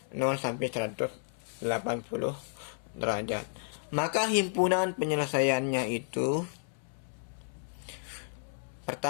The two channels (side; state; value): right; silent; 56 dB below the other